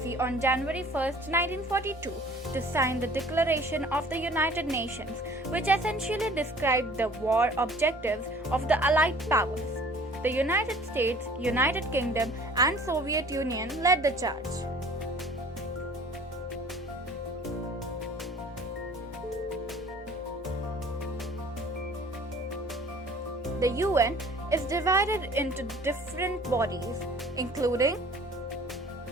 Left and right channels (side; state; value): left; noise; hum, 24 dB below the sound